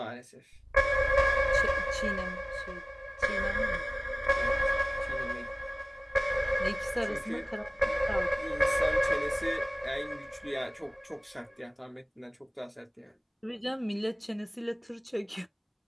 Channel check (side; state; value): both; identical; correlation 1.00